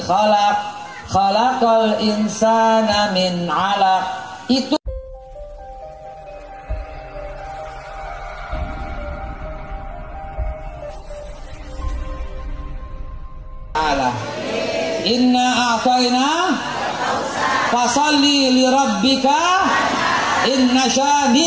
khalaqal insana min 'alaq. Itu Allah. Inna a'tayna fasalli li rabbika inna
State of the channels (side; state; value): both; identical; correlation 1.00